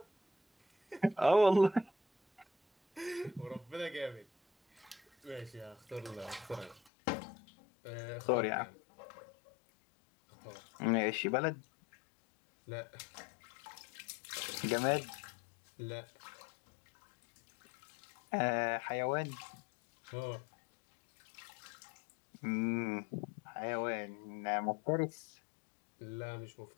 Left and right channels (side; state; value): right; drops out; at 6.9 s